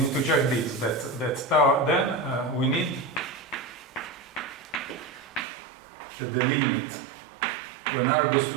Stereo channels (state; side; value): drops out; left; at 5.5 s